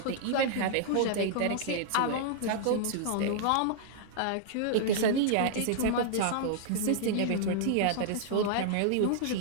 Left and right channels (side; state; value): both; different; correlation -0.01